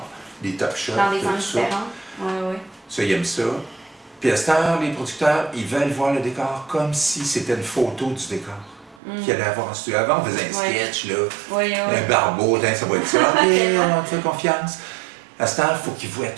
des top shots, dans des angles différents. Ça, ils aiment ça. Puis à cette heure, les producteurs, ils veulent voir le décor comme si c'était une photo du décor. Qu'il allait avoir en studio. Avant, on faisait un sketch, là, un barbeau, ça va être ça. OK, on te fait confiance. À cette heure, il faut qu'ils voient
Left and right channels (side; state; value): left; drops out; at 9.0 s